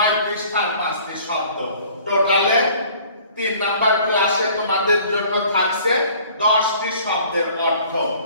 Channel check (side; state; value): both; inverted; correlation -0.53